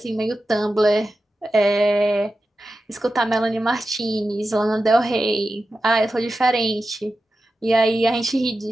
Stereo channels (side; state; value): both; normal; correlation 0.92